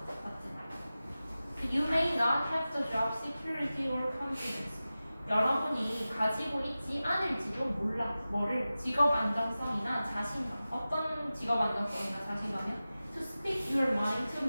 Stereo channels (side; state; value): both; inverted; correlation -0.95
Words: 맞지? You may not have the job security or confidence. 여러분이 가지고 있지 않을지도 몰라. 뭐를? 직업 안정성이나 자신감. 어떤 직업 안정성이나 자신감이요? To speak your mind to